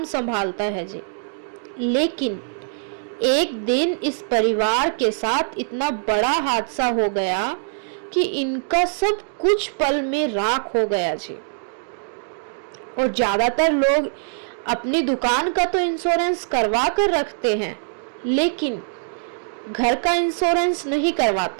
संभालता है जी। लेकिन एक दिन इस परिवार के साथ इतना बड़ा हादसा हो गया कि इनका सब कुछ पल में राख हो गया जी। और ज्यादातर लोग अपनी दुकान का तो इंश्योरेंस करवा कर रखते हैं, लेकिन घर का इंश्योरेंस नहीं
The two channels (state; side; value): silent; left; digital silence